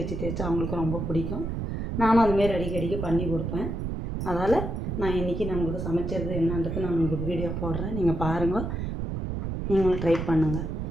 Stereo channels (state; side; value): noise; right; rumble, 3 dB below the sound